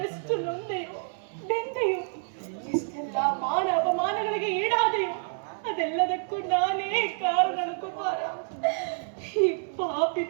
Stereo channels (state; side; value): silent; left; digital silence